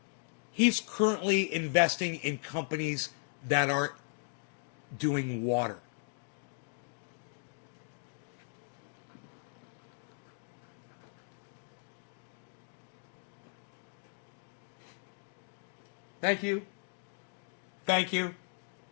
he's currently investing in companies that are doing water. Thank you. Thank you.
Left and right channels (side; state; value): right; silent; 53 dB below the other